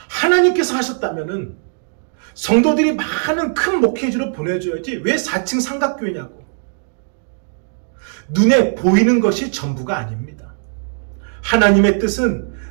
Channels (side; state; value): left; silent; digital silence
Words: 하나님께서 하셨다면은 성도들이 많은 큰 목회지로 보내줘야지 왜 4층 삼각교회냐고. 눈에 보이는 것이 전부가 아닙니다. 하나님의 뜻은